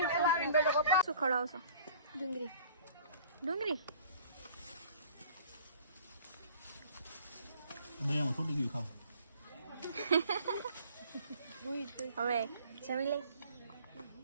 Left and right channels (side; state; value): both; inverted; correlation -0.51